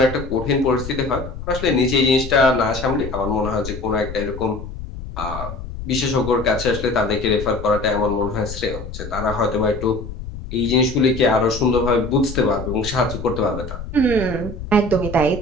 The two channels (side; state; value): left; noise; rumble, 10 dB below the sound